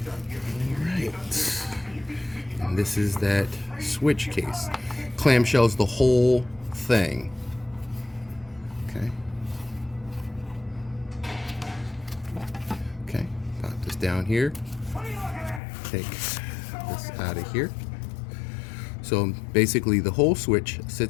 All right. And this is that Switch case. Clamshells the whole thing. Okay. Okay. Pop this down here. Take this out of here. So basically the whole Switch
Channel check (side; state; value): right; drops out; at 15.6 s